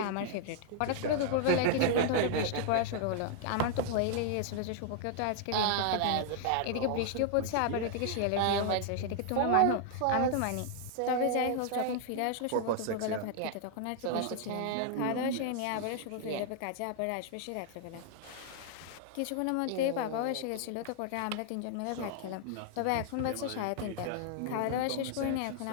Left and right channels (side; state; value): both; different; correlation -0.01